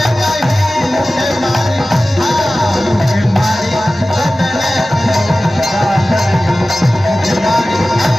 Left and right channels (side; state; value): both; normal; correlation 0.96